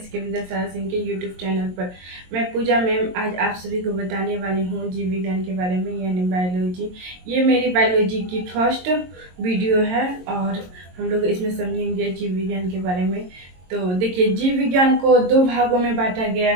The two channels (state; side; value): late; left; 22 ms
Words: विद्यासागर सिंह के यूट्यूब चैनल पर। मैं पूजा मैम आज आप सभी को बताने वाली हूँ जीव विज्ञान के बारे में, यानी बायोलॉजी। ये मेरी बायोलॉजी की फर्स्ट वीडियो है और हम लोग इसमें समझेंगे जीव विज्ञान के बारे में। तो देखिए, जीव विज्ञान को दो भागों में बांटा गया